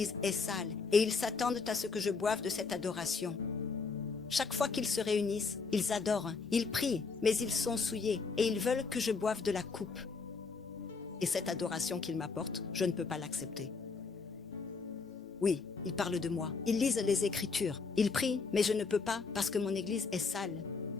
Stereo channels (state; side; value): quieter; right; 4.7 dB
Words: est sale et ils s'attendent à ce que je boive de cette adoration. Chaque fois qu'ils se réunissent, ils adorent, ils prient, mais ils sont souillés et ils veulent que je boive de la coupe. Et cette adoration qu'ils m'apportent, je ne peux pas l'accepter. Oui, ils parlent de moi, ils lisent les Écritures, ils prient, mais je ne peux pas parce que mon Église est sale.